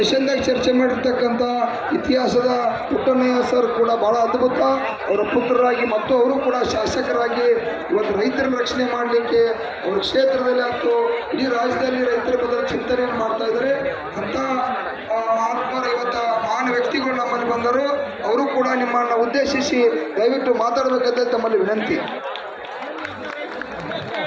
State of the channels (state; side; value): identical; both; correlation 1.00